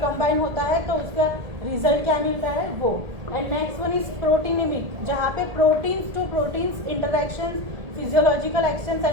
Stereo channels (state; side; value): late; left; 1.8 ms